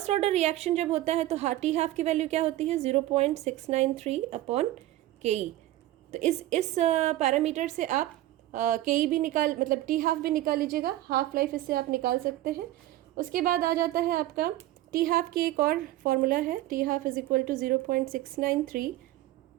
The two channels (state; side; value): quieter; left; 15.4 dB